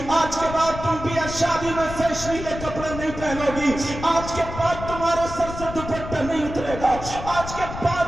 آج کے بعد تم بھی شادی میں فیشنیلے کپڑے نہیں پہنو گی, آج کے بعد تمہارے سر سے دوپٹہ نہیں اترے گا, آج کے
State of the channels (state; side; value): noise; left; rumble, 9 dB below the sound